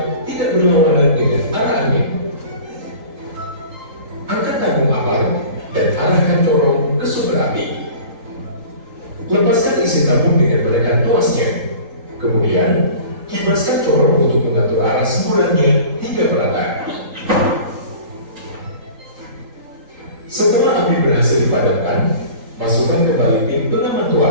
tidak berlawanan dengan arah angin. Angkat tabung APAR dan arahkan corong ke sumber api. Lepaskan isi tabung dengan menekan tuasnya. Kemudian, kibaskan corong untuk mengatur arah semburannya hingga merata. Setelah api berhasil dipadamkan, masukkan kembali pin pengaman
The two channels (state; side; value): late; left; 3.8 ms